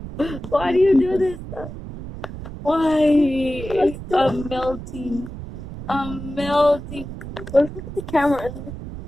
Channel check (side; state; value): right; noise; rumble, 11 dB below the sound